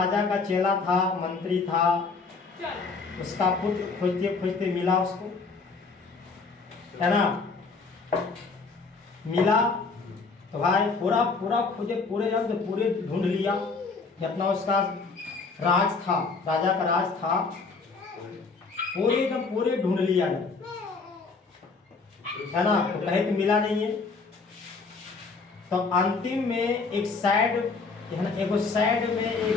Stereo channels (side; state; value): right; quieter; 4.4 dB